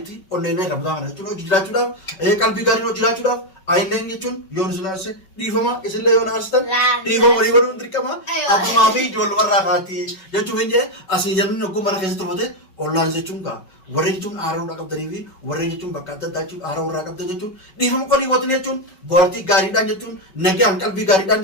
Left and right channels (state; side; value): late; right; 5.3 ms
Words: onneen rabdaa kana jechuun hojii jiraachuudhaaf qalbii gaariin hojii jiraachuudhaaf ayilleen jechuun yoo nu sinaasse dhiifama isinlee yoo naarsitan dhiifama walii godhuun dirqama abbumaa fi ijoollumarraa kaati jechuun hin jee asii jalli hogguu mana keessa turfate ollaan jechuun warreen jechuun aara irraa qabdanii fi warreen jechuun bakka adda addaa jechuun aara irraa qabdan jechuun dhiifama walii gootanii jechuun boortii gaariidhaan jechuun nagaan qalbii gaariidhaan